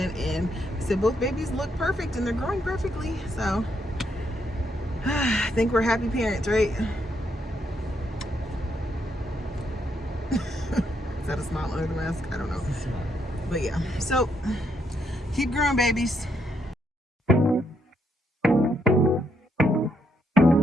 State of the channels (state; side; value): normal; both; correlation 0.76